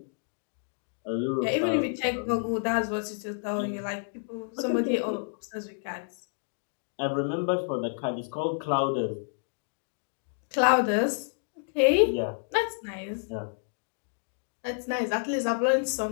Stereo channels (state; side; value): silent; right; digital silence